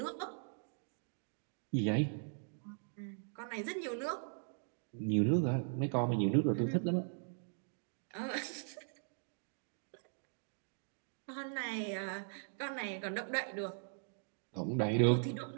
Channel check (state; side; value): silent; left; digital silence